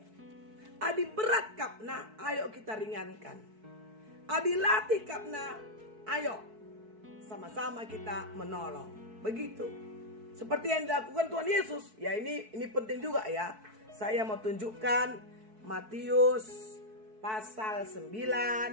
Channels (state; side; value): late; left; 4.6 ms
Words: Adi berat kapna, ayo kita ringankan. Adi latih kapna, ayo sama-sama kita menolong. Begitu. Seperti yang dilakukan Tuhan Yesus. Ya ini penting juga ya. Saya mau tunjukkan Matius pasal